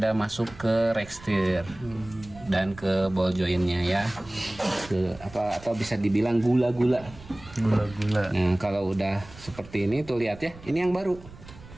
masuk ke rekstir dan ke ball jointnya ya. Atau bisa dibilang gula-gula. Gula-gula. Nah kalau udah seperti ini tuh lihat ya, ini yang baru.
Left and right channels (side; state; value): right; noise; rumble, 19 dB below the sound